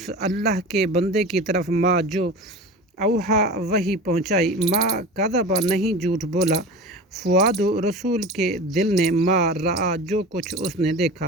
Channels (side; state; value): both; normal; correlation 0.33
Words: اللہ کے بندے کی طرف ما جو اوحا وحی پہنچائی ما کذب نہیں جھوٹ بولا فؤاد رسول کے دل نے ما رآ جو کچھ اس نے